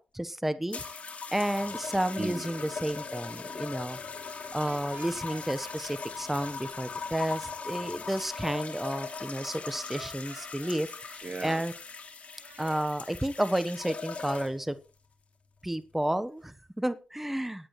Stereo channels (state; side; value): normal; both; correlation 0.93